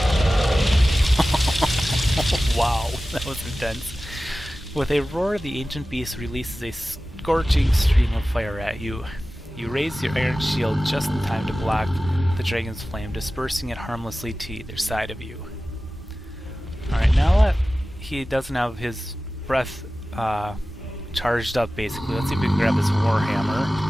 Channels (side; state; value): both; normal; correlation 0.96